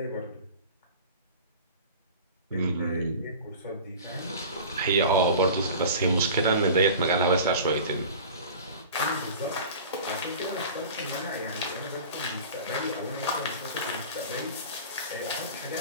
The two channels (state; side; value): inverted; both; correlation -0.38